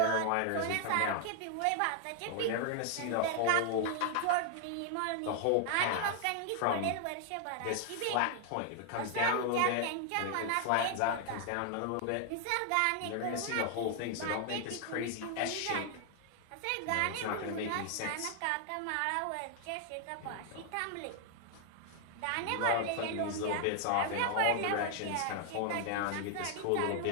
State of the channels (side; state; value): both; different; correlation 0.00